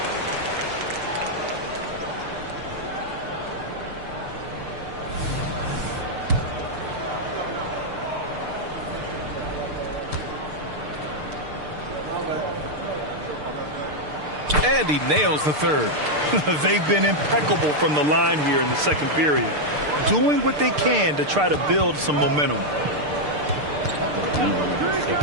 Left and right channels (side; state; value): left; late; 6.7 ms